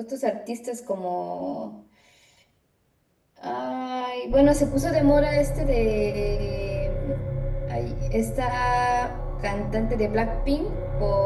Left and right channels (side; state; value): both; identical; correlation 1.00